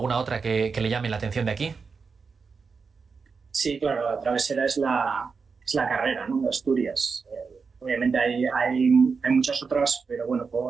otra que le llame la atención de aquí. Sí, claro, la travesera es la carrera, ¿no?, de Asturias. Obviamente hay muchas otras, pero bueno,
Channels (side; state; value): left; quieter; 5.1 dB